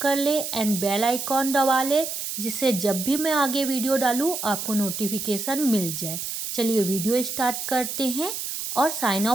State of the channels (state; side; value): noise; right; hiss, 5 dB below the sound